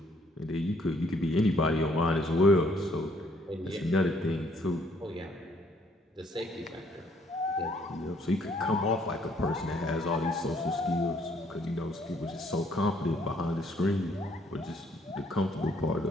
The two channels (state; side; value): normal; both; correlation 0.65